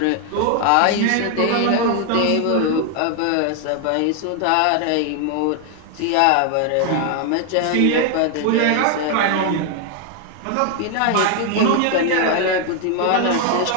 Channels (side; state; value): both; different; correlation 0.01